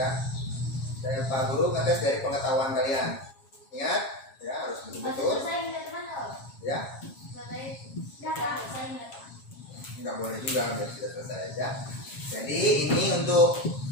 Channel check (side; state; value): right; late; 7.4 ms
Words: Saya Pak Guru ngetes dari pengetahuan kalian. Ingat ya, harus betul-betul Saya ingat mana? ya. Dapat. Saya ingat. Nggak boleh juga biar sudah selesai aja. Jadi ini untuk